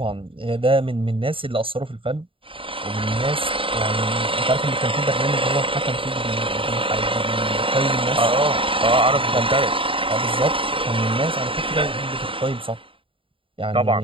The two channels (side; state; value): left; late; 0.26 ms